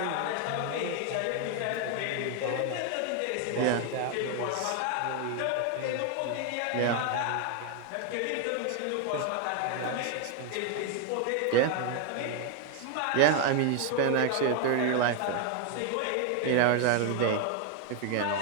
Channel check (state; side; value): different; both; correlation 0.01